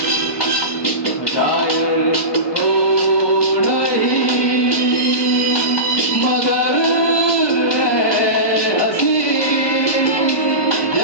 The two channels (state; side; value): late; right; 1.2 ms